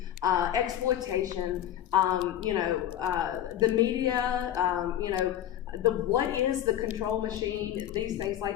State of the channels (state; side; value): quieter; right; 11.4 dB